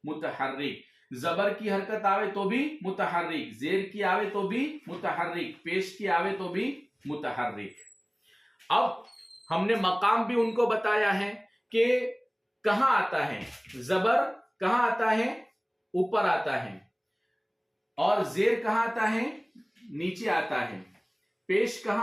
मुतहर्रिक। जबर की हरकत आवे तो भी मुतहर्रिक, जेर की आवे तो भी मुतहर्रिक, पेश की आवे तो भी मुतहर्रिक। अब हमने मकाम भी उनको बताया है कि कहां आता है जबर, कहां आता है? ऊपर आता है। और जेर कहां आता है? नीचे आता है। पेश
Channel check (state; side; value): identical; both; correlation 1.00